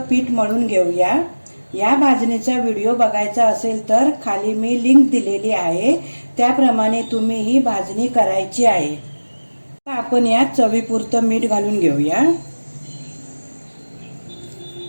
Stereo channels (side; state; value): both; inverted; correlation -1.00